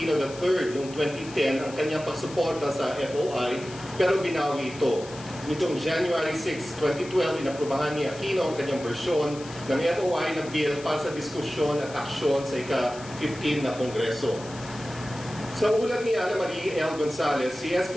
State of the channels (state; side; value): noise; left; hiss, 17 dB below the sound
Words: III noong 2010 ang kanyang pagsuporta sa FOI, pero binawi ito. Nitong January 6, 2012, inaprubahan ni Aquino ang kanyang bersyon ng FOI na bill para sa diskusyon at aksyon sa ika-15 na Kongreso. Sa ulat ni Ana Marie L. Gonzalez, si